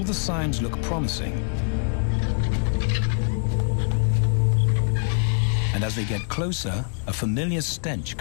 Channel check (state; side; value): silent; right; 63 dB below the other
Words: the signs look promising. And as they get closer, a familiar stench